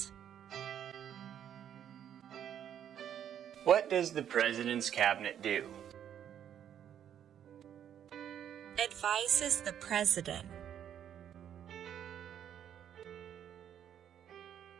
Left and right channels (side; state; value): left; quieter; 9.6 dB